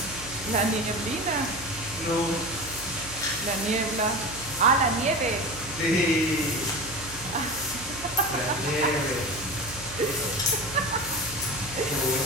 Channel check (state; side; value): noise; right; hum, 15 dB below the sound